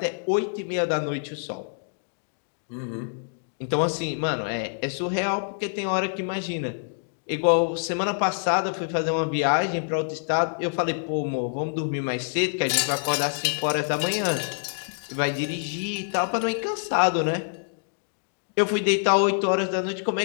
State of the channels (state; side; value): silent; right; digital silence